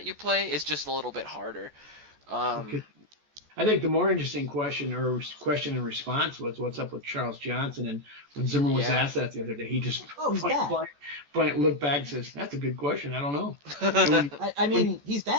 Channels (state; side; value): late; left; 14 ms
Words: you play is just a little bit harder. Okay. I think the more interesting question and response was what's up with Charles Johnson. And when Zimmer was asked that the other day, he just looked back and says, "That's a good question. I don't know." He's